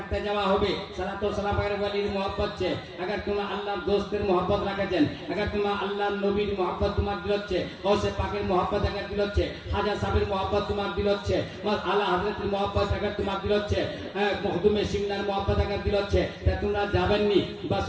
যাওয়া হবে। সালাত ও সালাম এর ওয়ালির मोहब्बत છે। अगर तुम আল্লাহর দোস্তের मोहब्बत রাখেছেন, अगर तुम আল্লাহর নবীর मोहब्बत তোমার দিল হচ্ছে, গৌসে পাকের मोहब्बत अगर দিল হচ্ছে, খাজা সাহেবের मोहब्बत তোমার দিল হচ্ছে, আলা হযরতের मोहब्बत अगर তোমার দিল হচ্ছে, মখদুমে সিমনার मोहब्बत अगर দিল হচ্ছে, তা তোমরা যাবেননি বাস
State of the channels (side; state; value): both; identical; correlation 1.00